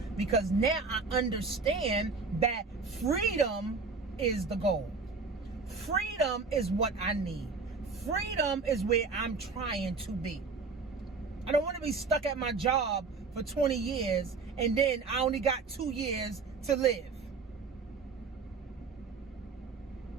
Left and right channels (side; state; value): left; quieter; 4.5 dB